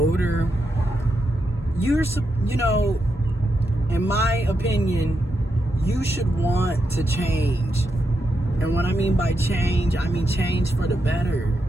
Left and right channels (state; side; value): normal; both; correlation 0.84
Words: in my opinion, you should want to change. And what I mean by change, I mean change for the better.